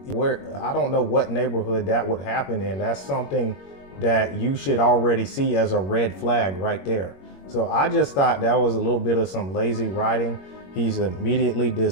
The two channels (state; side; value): late; right; 21 ms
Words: what neighborhood that would happen in. That's something that you should already see as a red flag right there. So I just thought that was a little bit of some lazy writing. He's immediately